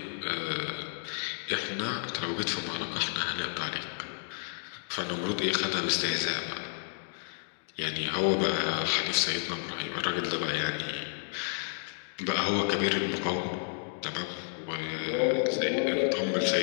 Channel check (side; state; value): right; silent; digital silence